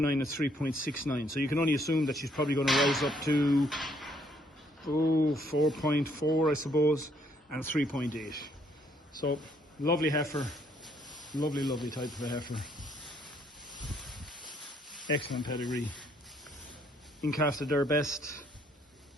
and 3.69. So you can only assume that she's probably going to rise up to 4.4, I suppose, and 3.8. So lovely heifer, lovely type of a heifer. Excellent pedigree. In calf to their best.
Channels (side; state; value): both; normal; correlation 0.68